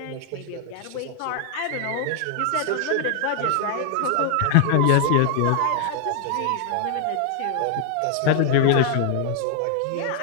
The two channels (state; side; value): different; both; correlation 0.00